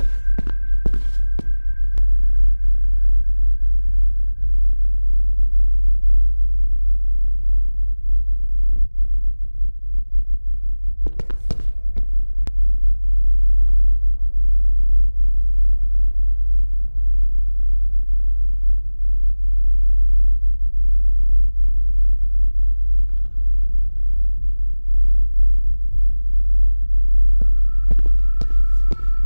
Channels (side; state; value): both; inverted; correlation -1.00